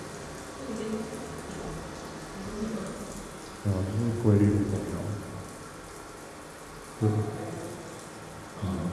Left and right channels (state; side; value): identical; both; correlation 1.00